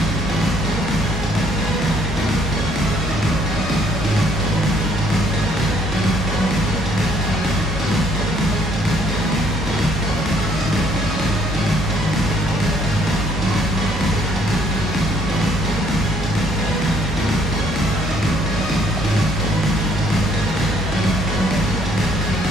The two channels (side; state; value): both; normal; correlation 0.64